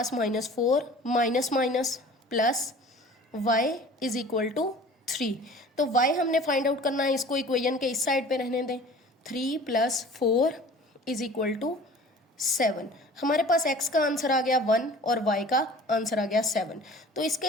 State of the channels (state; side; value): normal; both; correlation 0.45